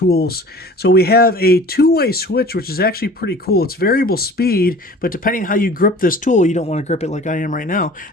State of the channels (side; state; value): both; normal; correlation 0.44